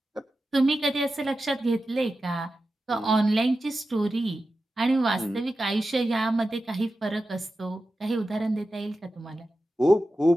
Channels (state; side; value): normal; both; correlation 0.92